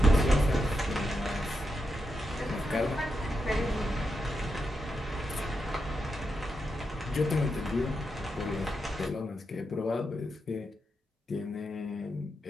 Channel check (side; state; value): both; normal; correlation 0.85